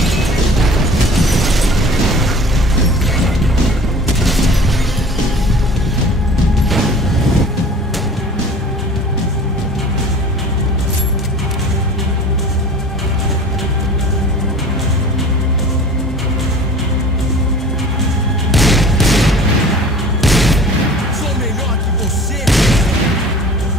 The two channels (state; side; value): normal; both; correlation 0.43